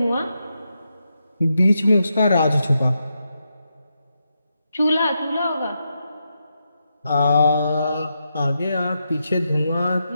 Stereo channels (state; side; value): inverted; both; correlation -0.85